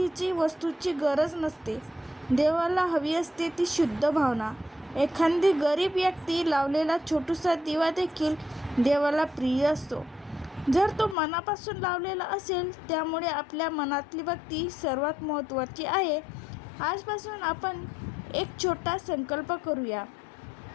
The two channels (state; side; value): drops out; right; at 11.2 s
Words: वस्तूची गरज नसते. देवाला हवी असते ती शुद्ध भावना. एखादी गरीब व्यक्ती लावलेला छोटासा दिवा देखील देवाला प्रिय असतो, जर तो मनापासून लावलेला असेल. त्यामुळे आपल्या मनातली भक्ती सर्वात महत्त्वाची आहे. आजपासून आपण एक छोटा संकल्प करूया.